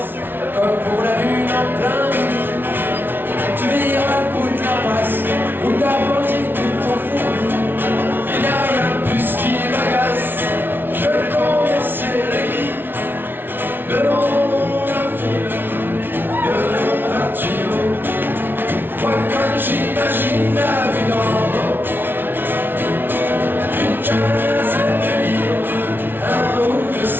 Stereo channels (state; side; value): late; left; 0.10 ms